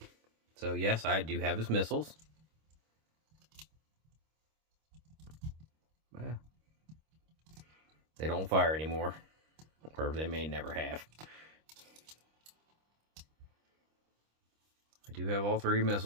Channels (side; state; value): left; late; 26 ms